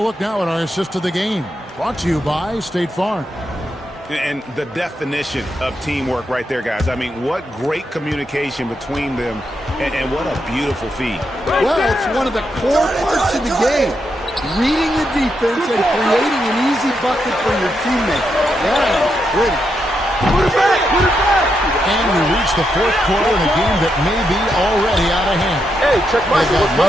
look now at our assist of the game? Brought to you by State Farm. And the definition of teamwork right there, guys. I mean, what great communication between them, and what a beautiful feed. Well, it's one of the core parts of the game. Reading the defense and creating an easy bucket for your teammate. That is pretty. Put it back! Put it back! And we reach the fourth quarter in a game that may be already out of hand. Hey, Check They got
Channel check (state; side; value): normal; both; correlation 0.82